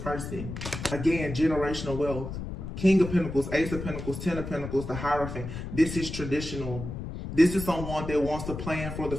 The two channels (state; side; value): noise; left; rumble, 7 dB below the sound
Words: Again, generational wealth. King of Pentacles, Ace of Pentacles, Ten of Pentacles, the Hierophant. This is traditional. This is someone that wants to plan for the